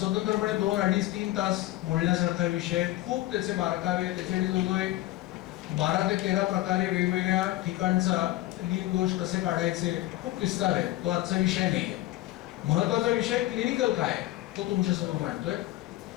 2, 2.5, 3 तास बोलण्यासारखा विषय. खूप त्याचे बारकावे, त्याचे जवळजवळ 12 ते 13 प्रकारे वेगवेगळ्या ठिकाणचा लीन दोष कसे काढायचे, खूप विस्तार आहे. तो आजचा विषय नाही आहे. महत्वाचा विषय क्लिनिकल काय तो तुमच्यासमोर मांडतोय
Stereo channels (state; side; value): quieter; right; 16.5 dB